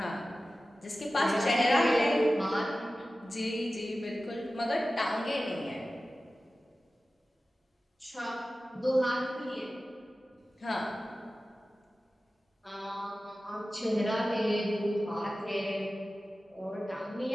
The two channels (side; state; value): both; normal; correlation 0.95